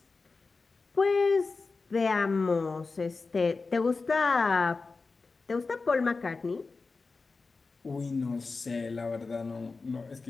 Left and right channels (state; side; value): quieter; right; 4.1 dB